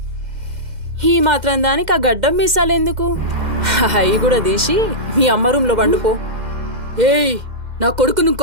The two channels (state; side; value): late; left; 2.1 ms